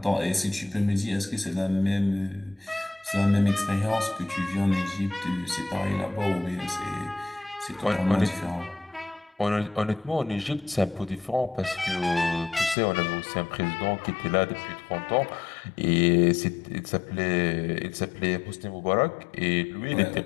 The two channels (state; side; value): drops out; right; at 12.8 s